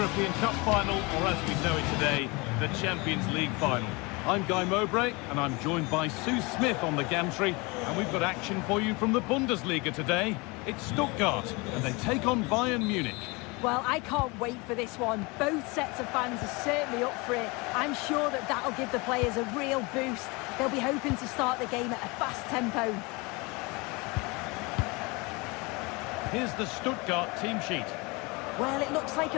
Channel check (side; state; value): right; quieter; 26.6 dB